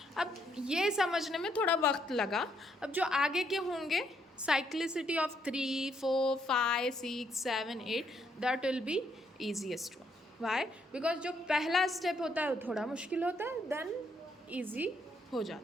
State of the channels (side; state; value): both; normal; correlation 0.73